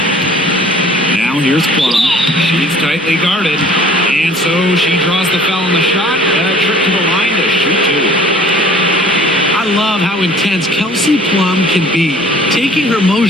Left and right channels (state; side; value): normal; both; correlation 0.51